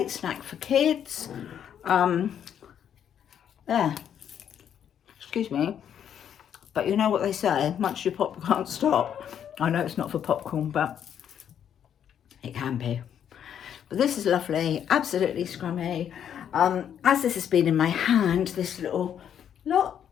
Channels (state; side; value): quieter; right; 9.1 dB